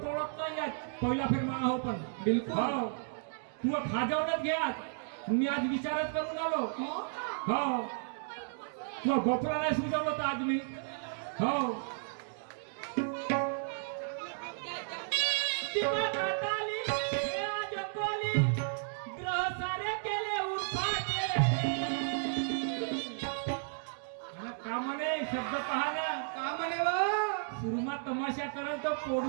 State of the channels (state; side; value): silent; left; digital silence